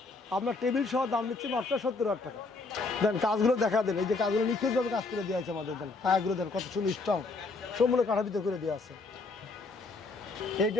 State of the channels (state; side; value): quieter; right; 3.7 dB